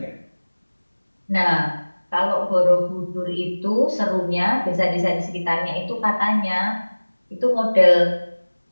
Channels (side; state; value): both; inverted; correlation -1.00